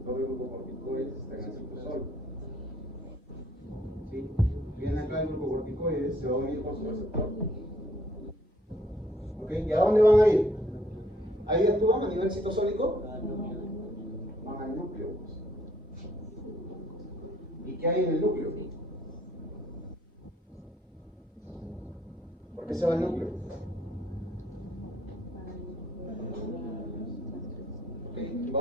de glucocorticoides está en el citosol. ¿Sí? Viene acá el glucocorticoide, se va a unir con su receptor. ¿Ok? ¿Y a dónde van a ir? ¿Ahí actúan a nivel citosólico? Van al núcleo. ¿Y qué hay en el núcleo? ¿Por qué se va al núcleo? Ok,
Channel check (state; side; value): normal; both; correlation 0.64